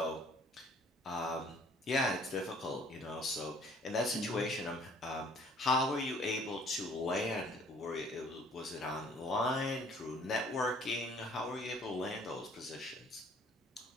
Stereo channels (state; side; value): normal; both; correlation 0.57